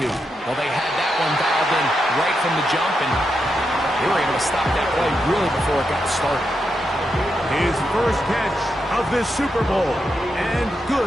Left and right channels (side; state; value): both; normal; correlation 0.85